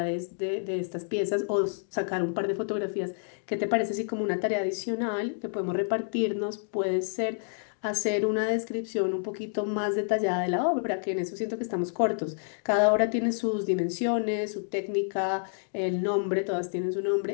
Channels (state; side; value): silent; right; digital silence